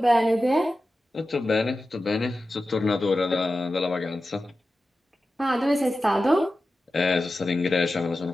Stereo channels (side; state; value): both; normal; correlation 0.93